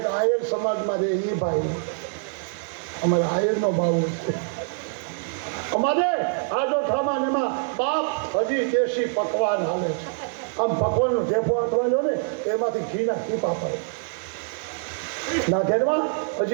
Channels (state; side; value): silent; left; 62 dB below the other